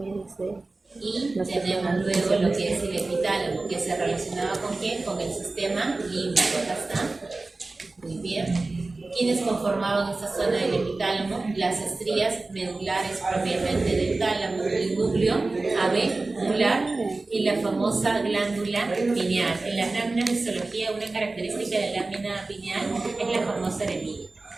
Y tenemos luego lo que es el epitálamo, que se relacionaba con ¿qué? Con el sistema límbico. Acá está. Muy bien. ¿Quiénes conformaban esta zona del epitálamo? Las estrías medulares propiamente del tálamo, el núcleo avenular y la famosa glándula pineal. En las láminas de histología, una característica de la lámina pineal es la famosa eremita.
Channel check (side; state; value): left; quieter; 3.3 dB